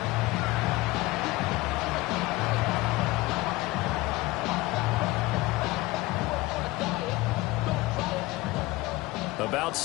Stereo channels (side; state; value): right; quieter; 19.9 dB